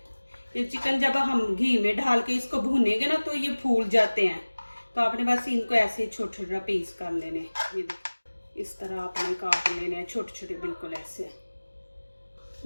ये चिकन जब हम घी में डाल के इसको भूनेंगे ना तो ये फूल जाते हैं, तो आपने बस इनको ऐसे ही छोटे छोटे पीस कर लेने। ये देखें इस तरह आपने काट लेने हैं छोटे छोटे, बिल्कुल ऐसे।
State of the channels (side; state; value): both; inverted; correlation -1.00